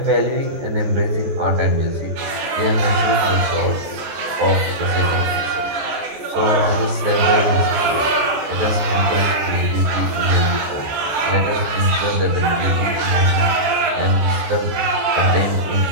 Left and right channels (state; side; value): late; left; 14 ms